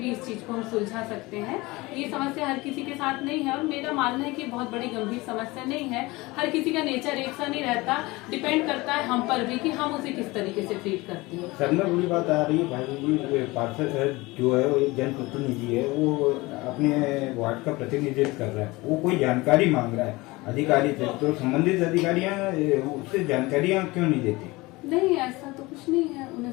इस चीज को हम सुलझा सकते हैं। ये समस्या हर किसी के साथ नहीं है और मेरा मानना है कि बहुत बड़ी गंभीर समस्या नहीं है। हर किसी का नेचर एक सा नहीं रहता, डिपेंड करता है हम पर भी कि हम उसे किस तरीके से ट्रीट करते हैं। सर में बड़ी बात आ रही है भाई जी, पार्षद जो है वो एक जनप्रतिनिधि है, वो अपने वार्ड का प्रतिनिधित्व कर रहा है, वो कोई जानकारी मांग रहा है अधिकारी से, तो संबंधित अधिकारियां उससे जानकारियां क्यों नहीं देती? नहीं, ऐसा तो कुछ नहीं है, उन्हें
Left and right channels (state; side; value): quieter; right; 22.0 dB